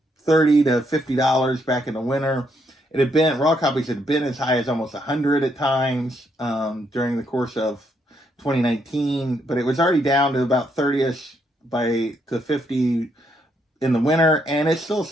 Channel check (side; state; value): both; normal; correlation 0.75